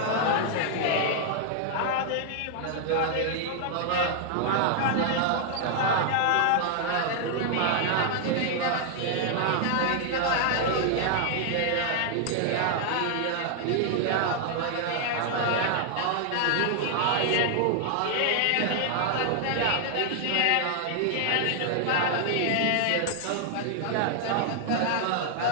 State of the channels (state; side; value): different; both; correlation 0.00